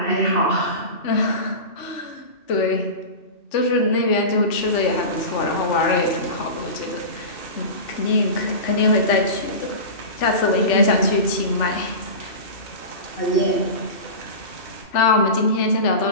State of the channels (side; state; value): right; late; 2.7 ms